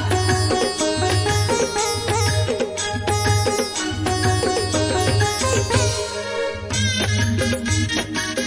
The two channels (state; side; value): identical; both; correlation 1.00